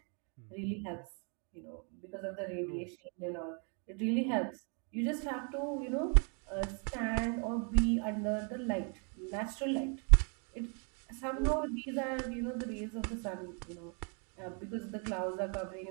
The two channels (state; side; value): quieter; left; 38.8 dB